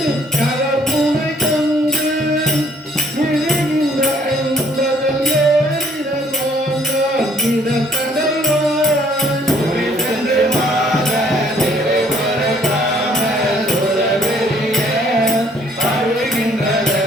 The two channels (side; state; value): both; normal; correlation 0.62